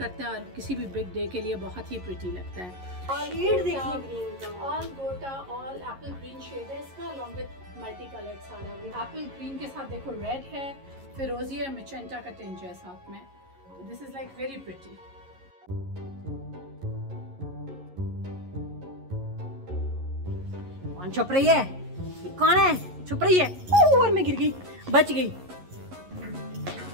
है और किसी भी बिग डे के लिए बहुत ही प्रिटी लगता है। ऑल गोटा ऑल एप्पल ग्रीन शेड है इसका, अलॉन्ग विद मल्टी कलर्ड सारा। एप्पल ग्रीन के साथ देखो रेड है, फिरोजी और मिचेंटा का टिंज है साथ में, तो this is like very pretty. कौन छुप रही है, कौन है छुप रही है, और मैं गिर गई, बच गई।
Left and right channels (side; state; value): left; late; 11 ms